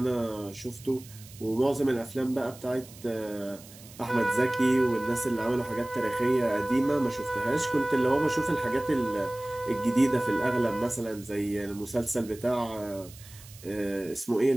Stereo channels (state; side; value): noise; right; hiss, 20 dB below the sound